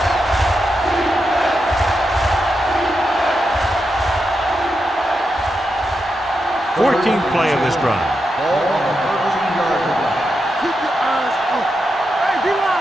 Fourteenth play of this drive. Ball on the 13-yard line. Keep your eyes open. Hey, D-line,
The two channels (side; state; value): both; normal; correlation 0.86